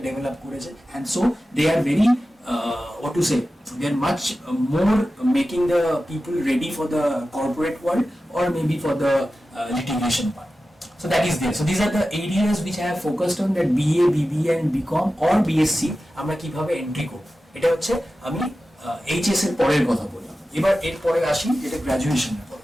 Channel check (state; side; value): normal; both; correlation 0.94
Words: ডেভেলপ করেছে, and so they are very what to say, they are much more making the people ready for the corporate world or maybe for the litigation part. So that is there. So these are the areas which I have focused on, that BA, BBA and BCom or BSc আমরা কিভাবে এন্ট্রি করব। এটা হচ্ছে আমি এইচএস এর পরের কথা বললাম। এবার এর পরে আসি যেটা গ্র্যাজুয়েশনের পর।